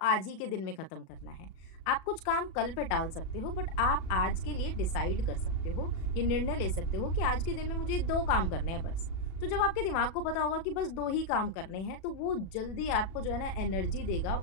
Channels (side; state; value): right; late; 37 ms